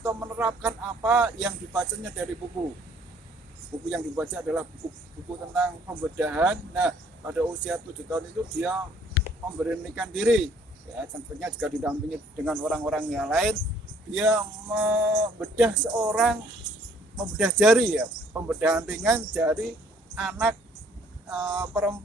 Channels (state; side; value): normal; both; correlation 0.61